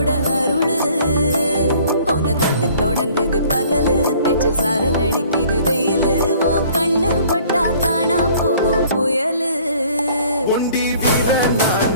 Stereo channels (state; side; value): inverted; both; correlation -0.55